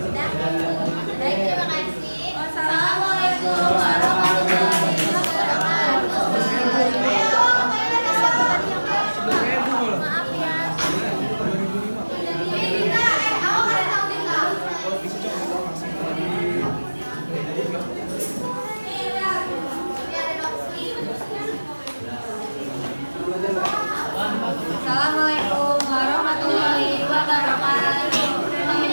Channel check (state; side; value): inverted; both; correlation -1.00